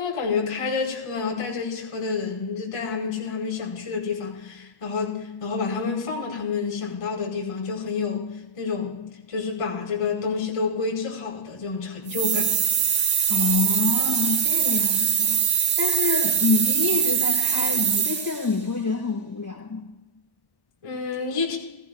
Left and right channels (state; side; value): late; right; 1.1 ms